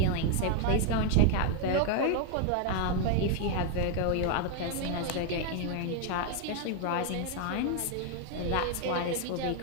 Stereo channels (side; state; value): both; different; correlation 0.01